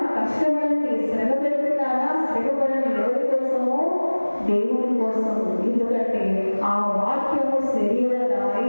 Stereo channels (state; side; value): inverted; both; correlation -1.00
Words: కష్టపడండి. శ్రమ పెడుతున్నారా? శ్రమపడండి. ఎవరి కోసమో? దేవుడి కోసం. ఎందుకంటే ఆ వాక్యము శరీరధారి